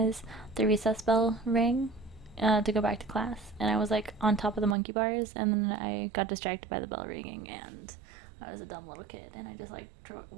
the recess bell rang to go back to class, and I was like on top of the monkey bars, and then I got distracted by the bell ringing, and I was a dumb little kid, and I just like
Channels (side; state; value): left; drops out; at 4.8 s